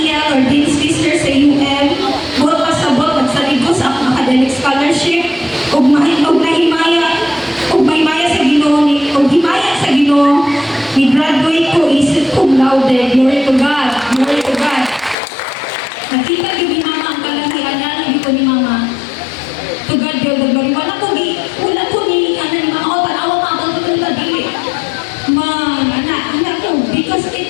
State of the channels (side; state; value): right; drops out; at 15.2 s